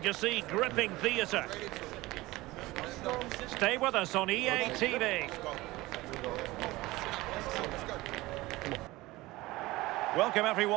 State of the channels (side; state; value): left; quieter; 19.6 dB